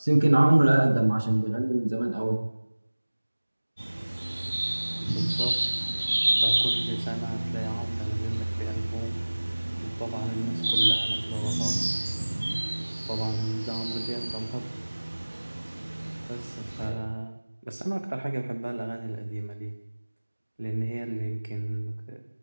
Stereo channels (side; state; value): both; inverted; correlation -1.00